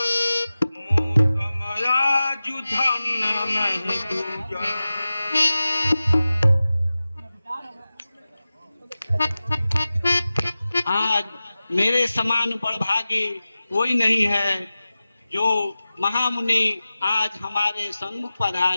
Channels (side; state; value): both; inverted; correlation -0.96